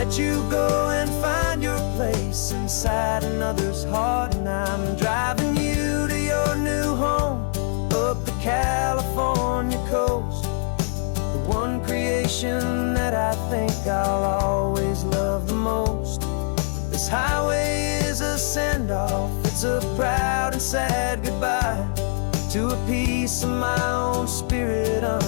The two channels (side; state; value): right; silent; 61 dB below the other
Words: you go and find your place inside another's heart. And I'm driving you to your new home up the California coast, the one creation that I think I'll always love the most. This highway is a send-off, it's a proud and sad goodbye to a piece of my own spirit